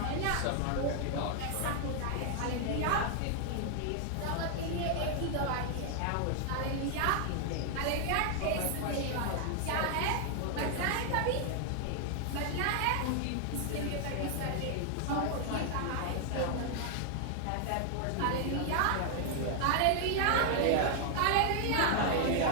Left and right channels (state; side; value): different; both; correlation 0.00